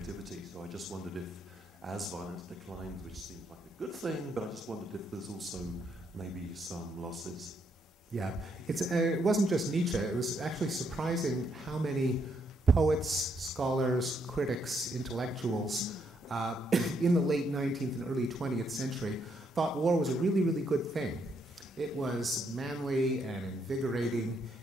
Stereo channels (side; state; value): both; normal; correlation 0.75